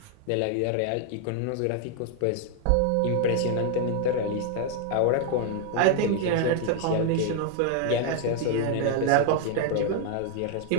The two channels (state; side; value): different; both; correlation 0.00